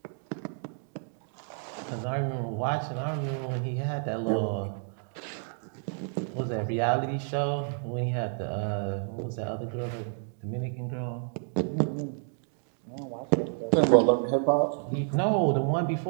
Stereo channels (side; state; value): left; silent; 58 dB below the other